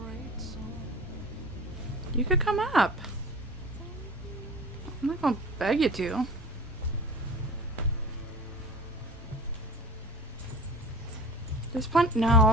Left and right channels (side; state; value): both; normal; correlation 0.38